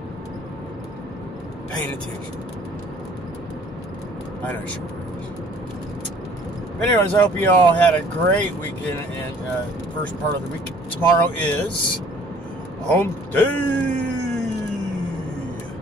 paying attention. I know she is. But anyways, I hope you all had a great weekend and first part of the week. Tomorrow is Hump Day.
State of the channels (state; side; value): normal; both; correlation 0.55